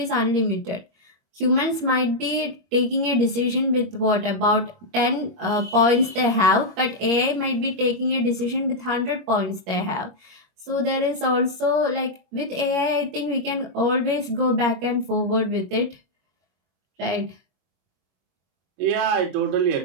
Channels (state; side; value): late; left; 21 ms